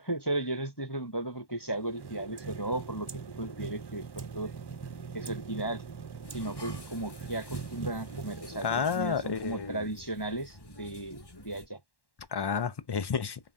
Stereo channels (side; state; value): right; late; 1.1 ms